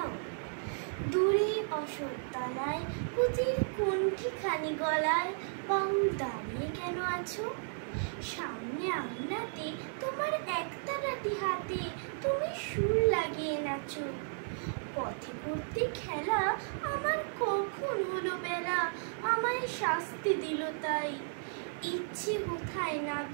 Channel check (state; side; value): silent; left; digital silence